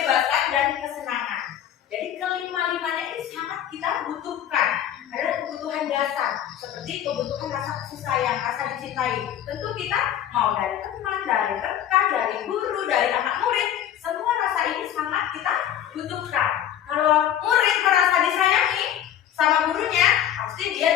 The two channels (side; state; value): right; quieter; 10.7 dB